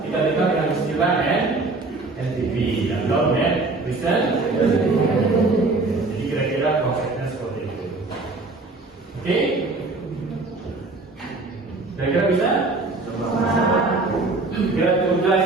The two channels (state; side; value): quieter; left; 3.4 dB